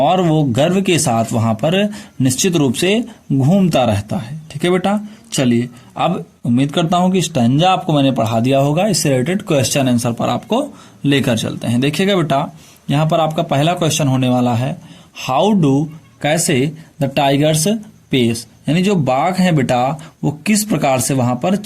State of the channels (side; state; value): both; identical; correlation 1.00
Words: वो गर्व के साथ वहां पर निश्चित रूप से घूमता रहता है। ठीक है बेटा, चलिए अब उम्मीद करता हूं कि स्टैंजा आपको मैंने पढ़ा दिया होगा। इससे रिलेटेड क्वेश्चन आंसर पर आपको लेकर चलते हैं। देखिएगा बेटा यहाँ पर आपका पहला क्वेश्चन होने वाला है, हाउ डू, कैसे, द टाइगर्स पेस, यानी जो बाघ हैं बेटा वो किस प्रकार से वहां पर